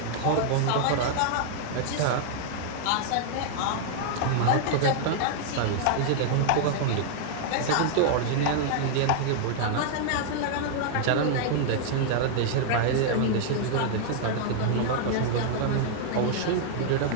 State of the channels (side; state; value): both; different; correlation 0.00